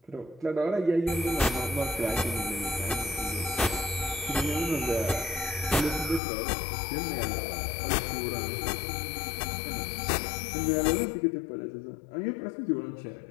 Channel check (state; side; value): drops out; right; at 6.2 s